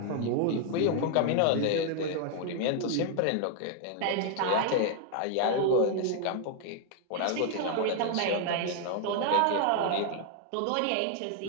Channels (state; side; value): different; both; correlation 0.00